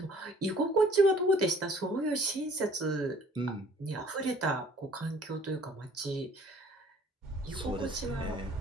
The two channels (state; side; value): normal; both; correlation 0.55